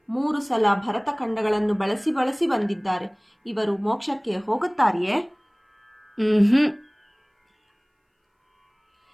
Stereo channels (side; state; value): both; identical; correlation 1.00